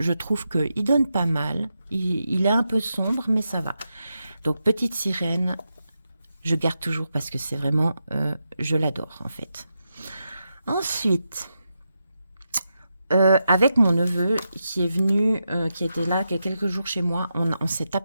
trouve qu'il donne pas mal. Il est un peu sombre, mais ça va. Donc, Petite Sirène, je garde toujours parce que c'est vraiment, je l'adore en fait. Ensuite, avec mon neveu qui est venu, qui était là il y a quelques jours chez moi, on s'est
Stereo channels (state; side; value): inverted; both; correlation -0.87